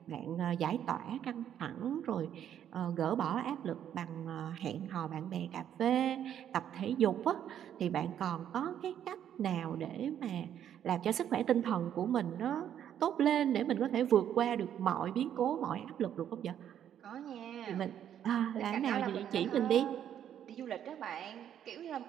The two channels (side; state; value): left; quieter; 9.9 dB